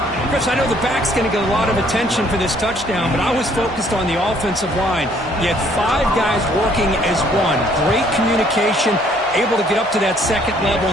Chris, I know the back's going to get a lot of attention for this touchdown, but I was focused on the offensive line. You had 5 guys working as one. Great communication, able to get up to that second level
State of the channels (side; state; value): both; normal; correlation 0.63